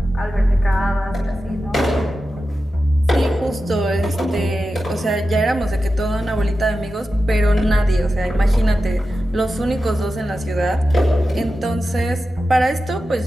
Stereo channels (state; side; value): normal; both; correlation 0.92